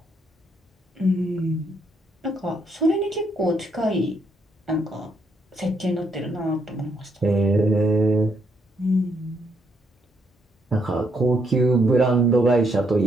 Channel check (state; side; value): normal; both; correlation 0.74